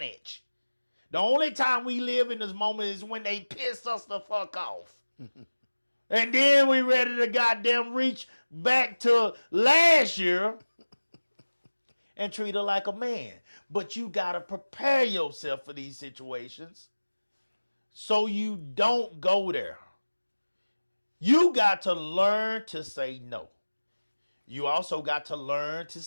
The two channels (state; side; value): inverted; both; correlation -1.00